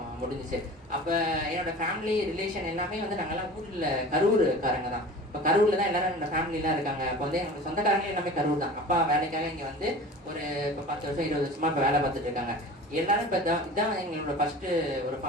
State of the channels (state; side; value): normal; both; correlation 0.38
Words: முடிஞ்சிச்சு. அப்ப என்னோட ஃபேமிலி ரிலேஷன் எல்லாமே வந்து நாங்கெல்லாம் ஊர்ல கரூர்காரங்க தான். இப்ப கரூர்ல தான் எல்லாரும் என்னோட ஃபேமிலி எல்லாம் இருக்காங்க. இப்போ வந்து எங்களோட சொந்தக்காரங்க எல்லாமே கரூர் தான். அப்பா வேலைக்காக இங்க வந்து ஒரு இப்ப 10 வருஷம் 20 வருஷமா இப்ப வேலை பார்த்துட்டு இருக்காங்க. எல்லாரும் இப்ப இதான் எங்களோட ஃபர்ஸ்ட் ஒரு